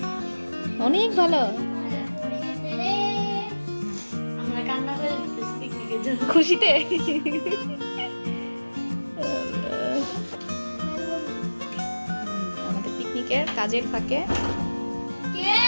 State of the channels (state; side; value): inverted; both; correlation -1.00